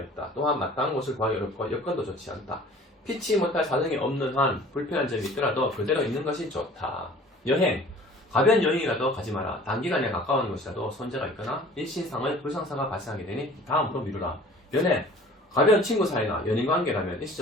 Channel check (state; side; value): normal; both; correlation 0.48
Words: 있다. 또한 마땅한 곳을 구하기 어렵고 여건도 좋지 않다. 피치 못할 사정이 없는 한 불편한 점이 있더라도 그대로 있는 것이 좋다. 여행, 가벼운 여행이라도 가지 마라. 단기간에 가까운 곳이라도 손재가 있거나 일신상의 불상사가 발생하게 되니 다음으로 미루라. 연애, 가벼운 친구 사이나 연인관계라면